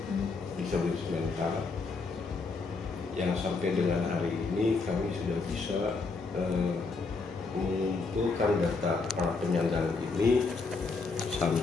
disabilitas mental yang sampai dengan hari ini kami sudah bisa mengumpulkan data para penyandang ini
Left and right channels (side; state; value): right; quieter; 4.2 dB